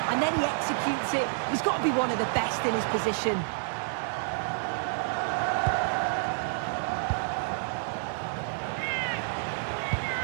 and then he executes it. He's got to be one of the best in his position.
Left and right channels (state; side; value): silent; left; 59 dB below the other